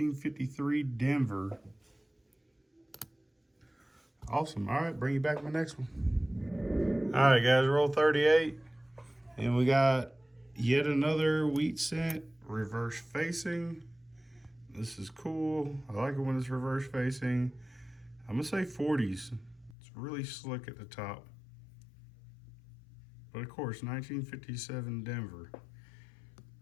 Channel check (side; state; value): right; drops out; at 19.8 s